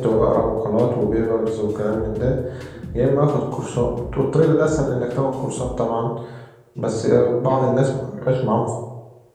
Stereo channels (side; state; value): both; identical; correlation 1.00